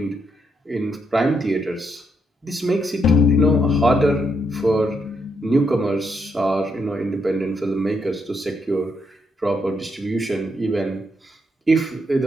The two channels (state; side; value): normal; both; correlation 0.79